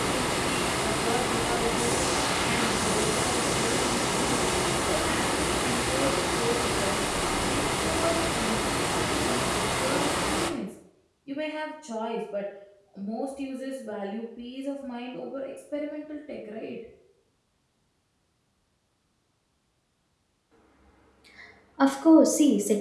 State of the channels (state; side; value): identical; both; correlation 1.00